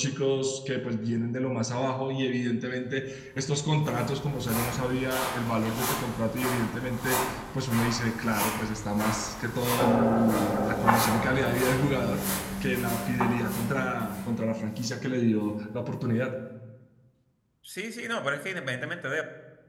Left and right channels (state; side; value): identical; both; correlation 1.00